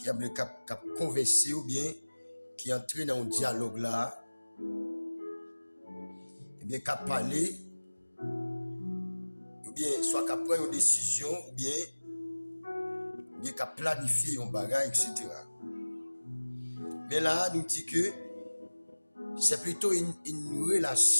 cap converser ou bien qui entre dans un dialogue là, et bien, qu'à parler, ou bien, soit qu'à prendre une décision, ou bien qu'à planifier un bagage, etc. Mais là, nous dit que c'est plutôt une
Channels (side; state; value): both; inverted; correlation -1.00